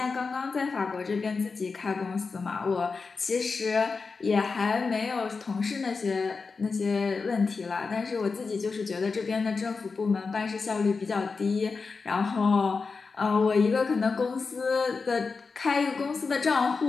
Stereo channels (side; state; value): right; quieter; 4.6 dB